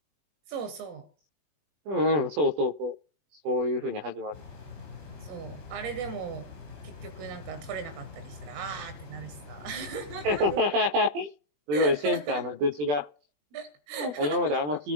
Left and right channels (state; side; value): late; left; 20 ms